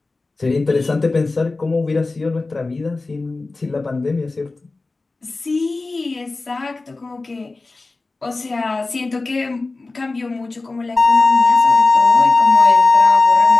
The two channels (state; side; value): quieter; right; 3.5 dB